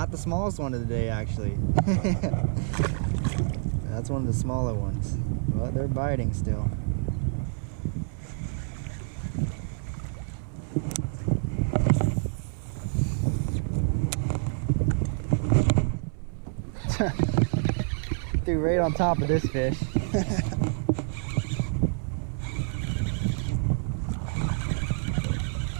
the smallest one of the day actually. That's one of the smaller ones. But they're biting still. Threw right on top of this fish.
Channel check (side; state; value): left; silent; 60 dB below the other